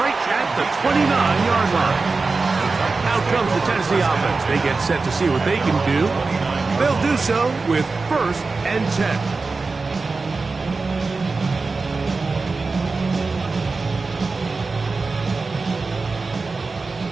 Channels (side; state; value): left; quieter; 4.0 dB